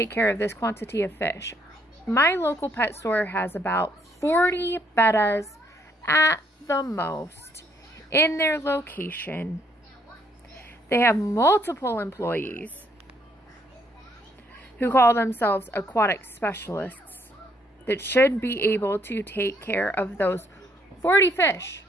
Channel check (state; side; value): normal; both; correlation 0.69